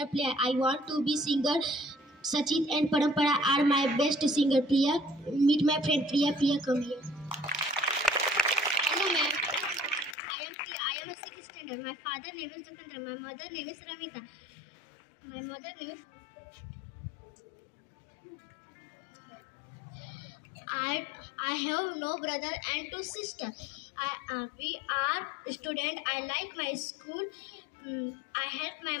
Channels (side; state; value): right; drops out; at 10.2 s